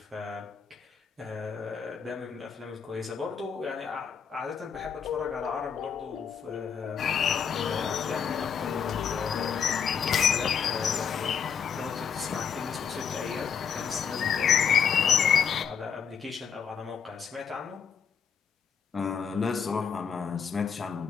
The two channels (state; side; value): quieter; right; 7.0 dB